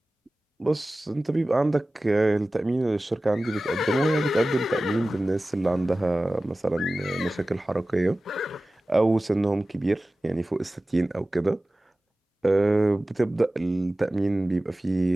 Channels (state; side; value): normal; both; correlation 0.97